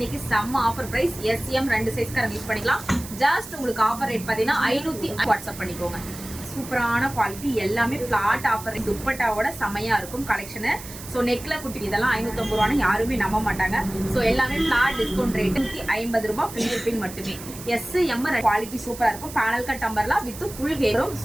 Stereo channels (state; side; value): noise; right; hiss, 14 dB below the sound